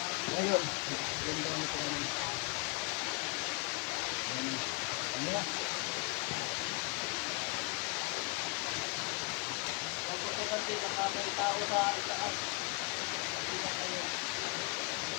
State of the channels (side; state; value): right; quieter; 30.2 dB